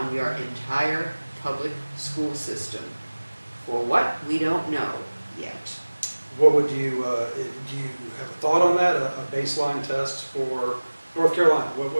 your entire public school system. For what? We don't know yet. What would you, do you have a thought on that, a baseline test for North Carolina? What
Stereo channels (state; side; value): inverted; both; correlation -1.00